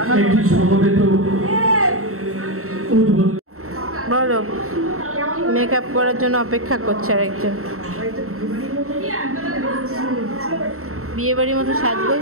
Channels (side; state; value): left; late; 0.63 ms